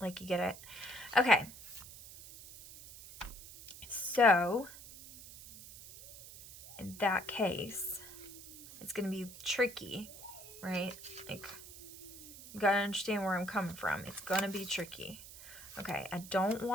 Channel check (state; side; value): noise; right; hiss, 15 dB below the sound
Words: you get it? Okay. So, in that case, it's going to be tricky, right? Like, you gotta understand where I'm coming from. It's gonna be tricky. Okay, I don't